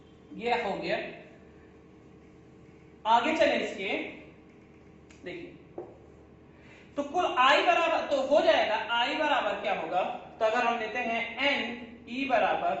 ये हो गया। आगे चले इसके, देखिए तो कुल आई बराबर तो हो जाएगा, आई बराबर क्या होगा, तो अगर हम लेते हैं एन, ई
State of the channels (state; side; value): identical; both; correlation 1.00